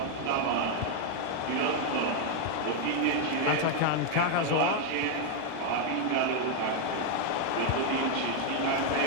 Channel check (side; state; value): both; different; correlation 0.00